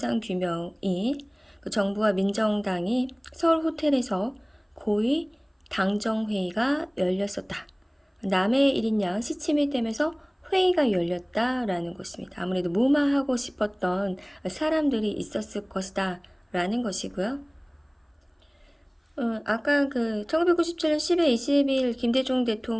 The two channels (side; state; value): both; identical; correlation 1.00